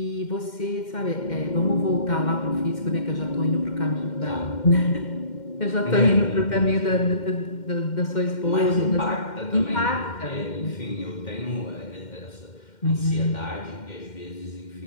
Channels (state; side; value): late; right; 2.1 ms